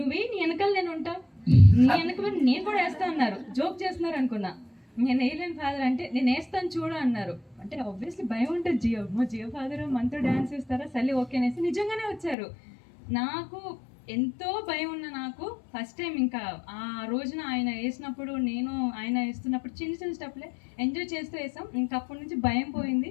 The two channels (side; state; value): right; drops out; at 12.4 s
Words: నీ వెనకాల నేను ఉంటా, నీ వెనక నేను కూడా వేస్తా అన్నారు. జోక్ చేస్తున్నారు అనుకున్నా. నేను వేయలేను ఫాదర్ అంటే, నేను వేస్తాను చూడు అన్నారు. అంటే ఆబ్వియస్లీ భయం ఉంటుంది. జియో ఫాదర్ మనతో డ్యాన్స్ వేస్తారా, సరే ఓకే అనేసి నిజంగానే వచ్చారు. నాకు ఎంతో భయం ఉన్న నాకు ఫస్ట్ టైం ఇంకా ఆ రోజున ఆయన వేసినప్పుడు నేను ఆయన వేస్తున్నప్పుడు చిన్న చిన్న స్టెప్లే ఎంజాయ్ చేస్తూ వేసాం. ఇంకా అప్పటి నుంచి భయం పోయింది.